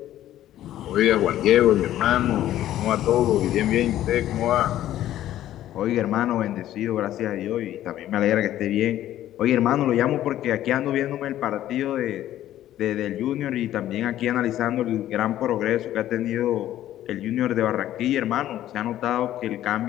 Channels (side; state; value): right; quieter; 12.9 dB